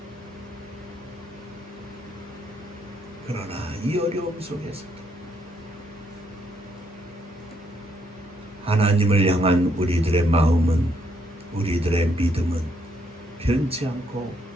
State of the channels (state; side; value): normal; both; correlation 0.73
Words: 그러나 이 어려움 속에서도 하나님을 향한 우리들의 마음은, 우리들의 믿음은 변치 않고